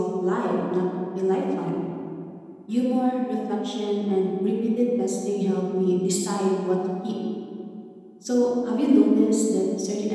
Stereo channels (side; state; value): both; identical; correlation 1.00